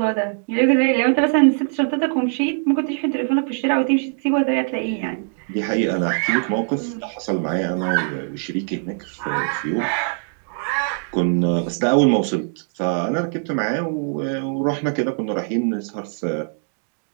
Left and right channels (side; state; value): left; silent; digital silence